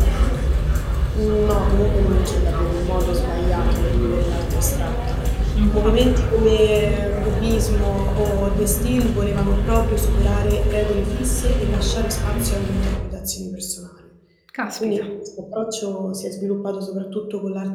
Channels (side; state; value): both; identical; correlation 1.00